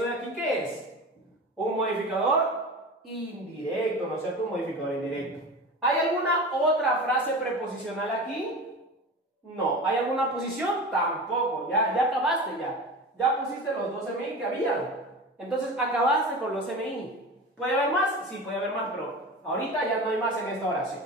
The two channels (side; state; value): both; normal; correlation 0.31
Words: de aquí qué es? Un modificador indirecto, ¿no es cierto? Un modificador indirecto. ¿Hay alguna otra frase preposicional aquí? No. ¿Hay alguna posición? Tampoco. Ya acabaste ya. Ya pusiste los 2 MI que habían. Entonces acabaste con los MI. ¿Puede haber más? Sí, puede haber más, pero ahorita ya no hay más en esta oración